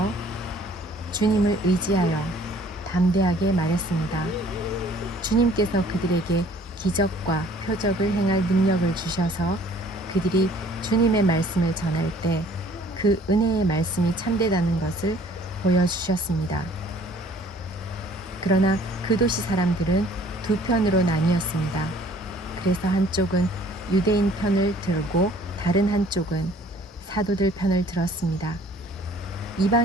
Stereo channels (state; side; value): normal; both; correlation 0.55